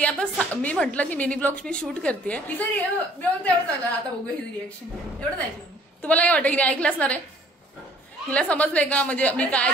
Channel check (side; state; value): both; normal; correlation 0.57